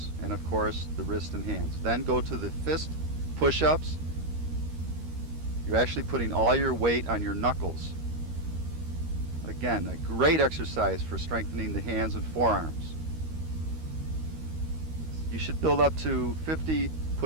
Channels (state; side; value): late; left; 13 ms